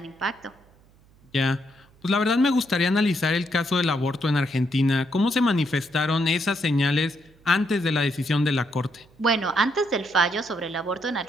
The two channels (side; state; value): right; noise; hum, 29 dB below the sound